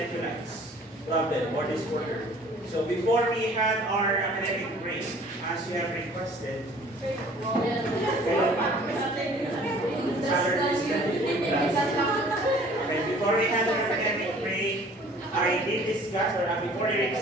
problem or disorder. So before we had our academic break, as you have requested, okay, before we had our academic break, I did discuss, or before your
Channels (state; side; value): normal; both; correlation 0.52